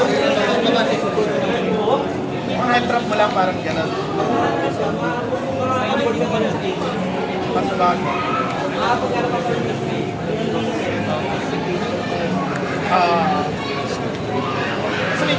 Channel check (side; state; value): both; identical; correlation 1.00